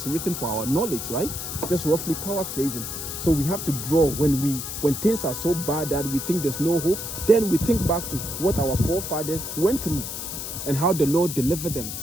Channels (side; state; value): left; noise; hiss, 6 dB below the sound